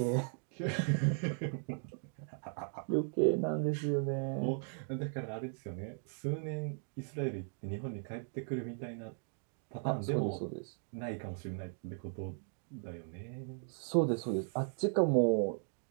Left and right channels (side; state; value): left; silent; 53 dB below the other